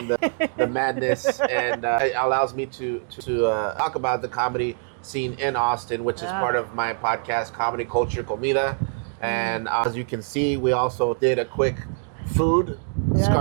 the madness, and it allows me to talk about the comedy scene in Austin, which is part of my podcast, Comedy Culture Comida. And as you can see, we also did a quick food,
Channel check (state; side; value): silent; left; 63 dB below the other